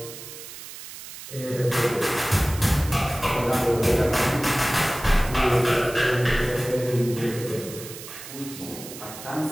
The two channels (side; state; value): right; noise; hiss, 13 dB below the sound